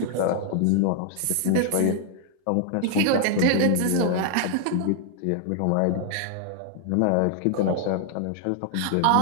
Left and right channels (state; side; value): different; both; correlation 0.00